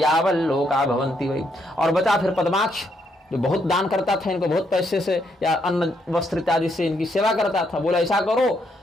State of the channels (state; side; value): normal; both; correlation 0.75